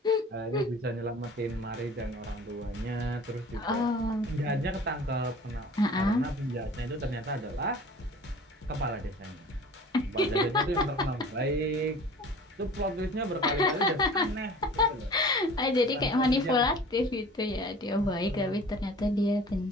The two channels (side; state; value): both; normal; correlation 0.44